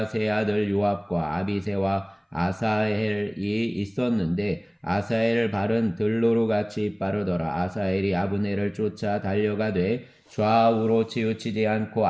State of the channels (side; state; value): both; identical; correlation 1.00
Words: 세 아들 요압과 아비새와 아사헬이 있었는데 아사헬 발은 들로루같이 빠르더라. 아사헬이 아브넬을 쫓아 달려가되 좌우로 치우치지 않고